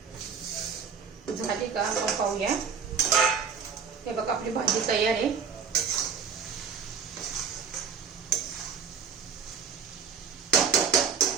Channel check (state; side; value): quieter; left; 6.5 dB